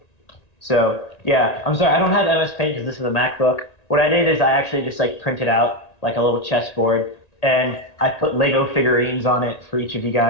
So yeah, I'm sorry, I don't have MS Paint because this is a MacBook. What I did is I actually just like printed out like a little chessboard, and I put Lego figurines on it for each of you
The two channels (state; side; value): late; right; 1.8 ms